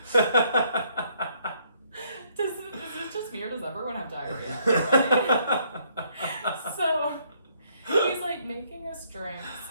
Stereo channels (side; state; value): both; inverted; correlation -0.68